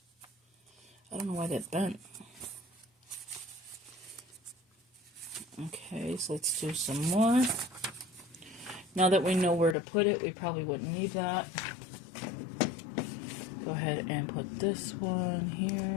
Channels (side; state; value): right; drops out; at 9.8 s